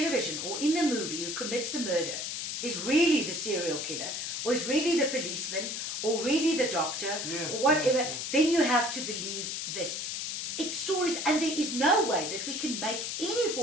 or in the movie who commits a murder is really the serial killer, or is really the policeman, or really the doctor, or whatever, then you have to believe this. It's stories, and there is no way that we can make any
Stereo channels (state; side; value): noise; left; hiss, 3 dB below the sound